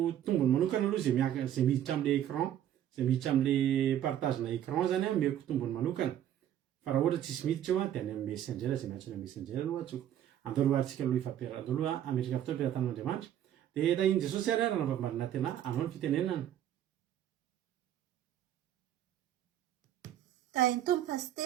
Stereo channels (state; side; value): quieter; left; 11.0 dB